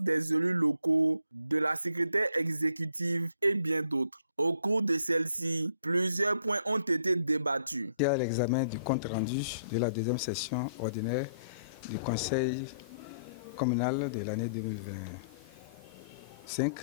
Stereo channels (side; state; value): both; inverted; correlation -0.65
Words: élus locaux, de la secrétaire exécutive et bien d'autres. Au cours de celle-ci, plusieurs points ont été débattus. Il y a l'examen du compte rendu de la deuxième session ordinaire du conseil communal de l'année 2025,